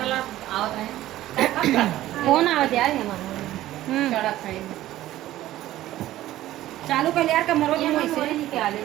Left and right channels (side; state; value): left; quieter; 14.7 dB